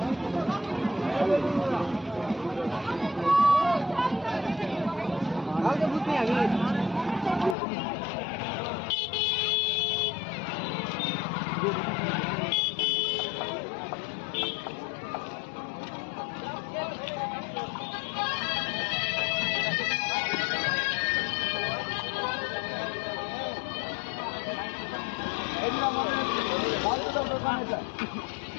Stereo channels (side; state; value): right; drops out; at 7.6 s